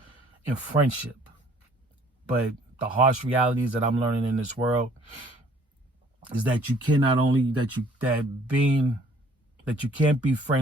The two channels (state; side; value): normal; both; correlation 0.58